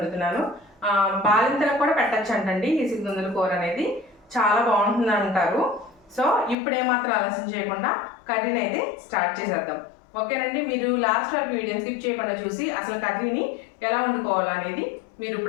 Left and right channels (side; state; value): right; drops out; at 6.6 s